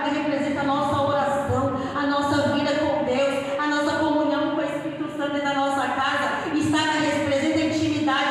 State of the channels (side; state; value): both; identical; correlation 1.00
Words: representa a nossa oração, a nossa vida com Deus, a nossa comunhão com o Espírito Santo dentro da nossa casa. Estaca representa a